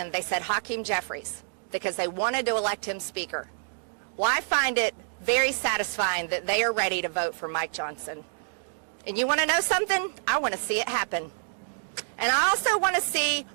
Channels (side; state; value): left; silent; digital silence